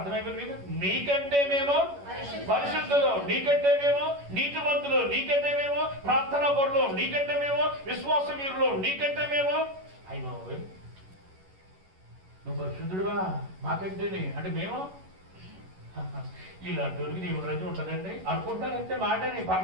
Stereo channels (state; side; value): late; left; 11 ms